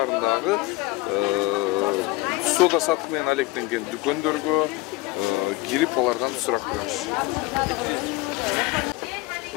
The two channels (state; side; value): quieter; right; 19.8 dB